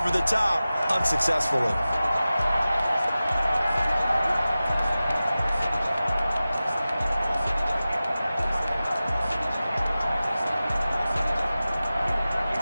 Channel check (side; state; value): both; inverted; correlation -0.96